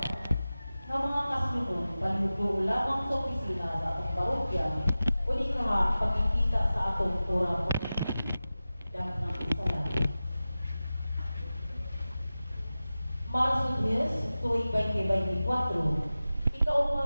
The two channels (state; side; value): inverted; both; correlation -0.95